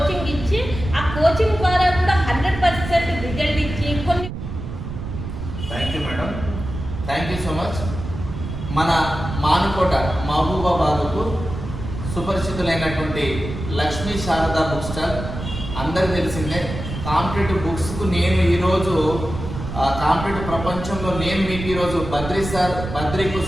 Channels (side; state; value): right; noise; rumble, 8 dB below the sound